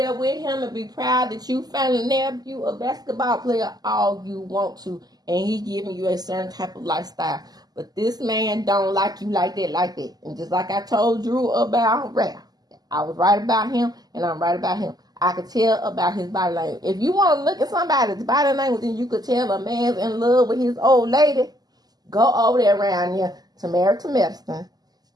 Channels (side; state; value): left; late; 0.19 ms